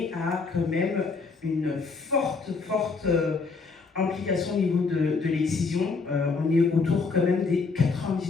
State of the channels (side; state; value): right; quieter; 4.5 dB